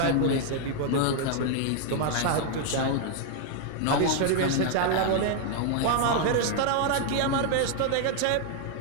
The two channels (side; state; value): both; different; correlation 0.00